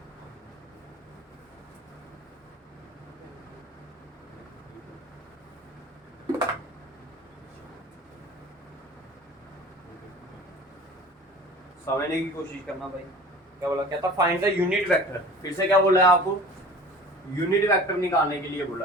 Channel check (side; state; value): both; normal; correlation 0.42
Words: समझने की कोशिश करना भाई, क्या बोला, कहता फाइंड द यूनिट वेक्टर। फिर से क्या बोला है आपको, यूनिट वेक्टर निकालने के लिए